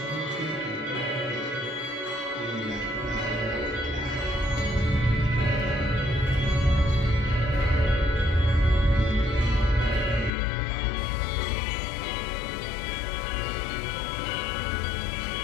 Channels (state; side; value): drops out; right; at 10.3 s